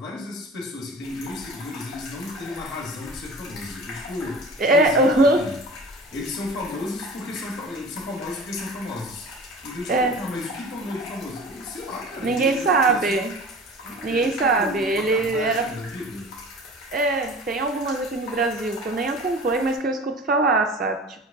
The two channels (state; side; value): normal; both; correlation 0.39